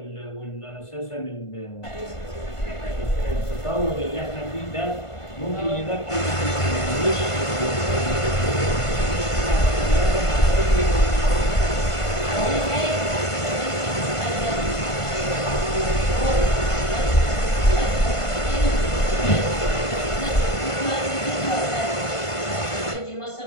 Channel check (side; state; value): right; late; 1.5 ms